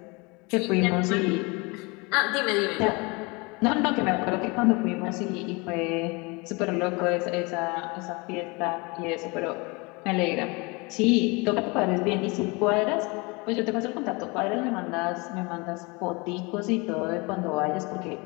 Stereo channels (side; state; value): right; quieter; 27.3 dB